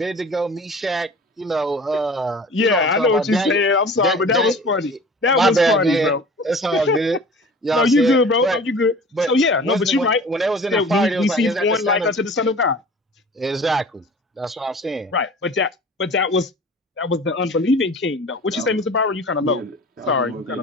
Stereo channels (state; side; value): normal; both; correlation 0.42